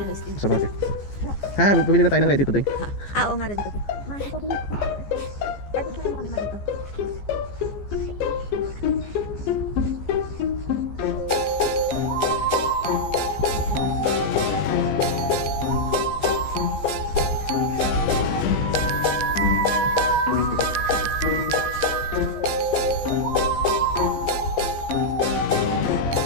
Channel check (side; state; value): right; late; 15 ms